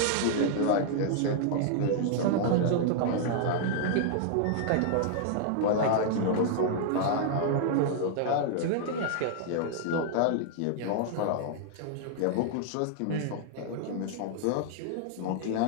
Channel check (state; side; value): different; both; correlation -0.01